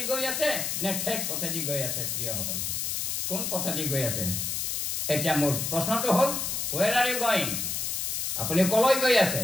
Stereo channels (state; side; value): noise; left; hiss, 1 dB below the sound